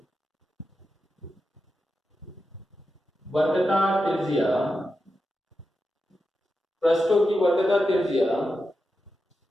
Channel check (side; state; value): both; normal; correlation 0.89